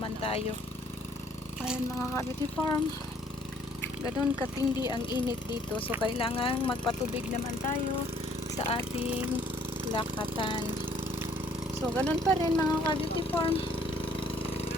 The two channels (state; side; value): normal; both; correlation 0.61